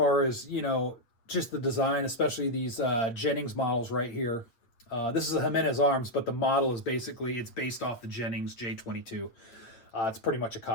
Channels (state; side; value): late; right; 8.6 ms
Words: as, just the design, especially these Jennings models right here. This is a Jimenez Arms, but the model is basically, it's based off the Jennings J-22. It's pretty much a